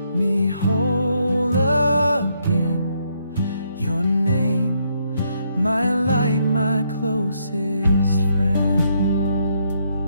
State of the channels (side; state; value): both; inverted; correlation -0.74